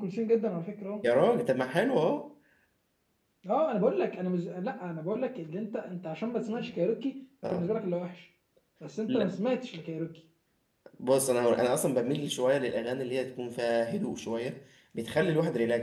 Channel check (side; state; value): both; identical; correlation 1.00